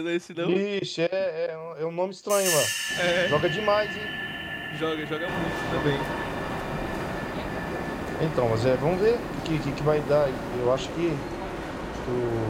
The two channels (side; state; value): both; identical; correlation 1.00